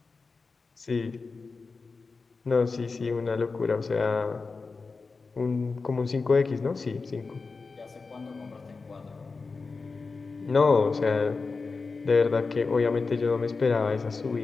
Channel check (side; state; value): right; quieter; 4.3 dB